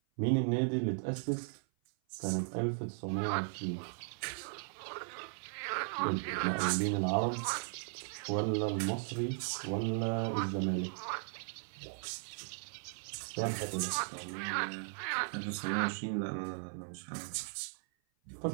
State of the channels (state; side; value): silent; left; 53 dB below the other